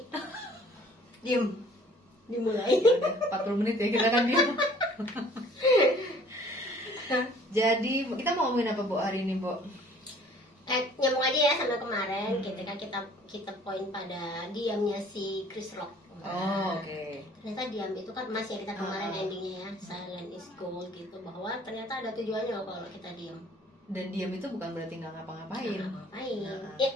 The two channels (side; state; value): both; normal; correlation 0.54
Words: Diem. Dimulai. Udah 40 menit ya kita kan diem. Jadi kita mau ngomongin apa Bu hari ini, Bu? Nyambung aja ya sama kemarin ketika kita poin pada diamnya si Chris Rock. Oh, oke. Ternyata diam itu kan emas ya, kita kemarin endingnya ya, silent is gold gitu, bahwa ternyata ada tujuannya loh kalau kita diam. Dan diam itu bukan berarti nggak ngapa-ngapain. Ngapain? Nah. Ya